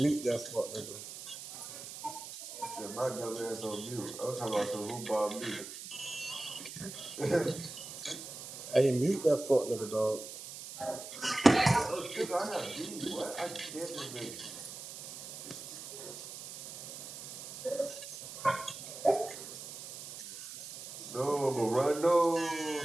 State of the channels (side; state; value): right; noise; hiss, 11 dB below the sound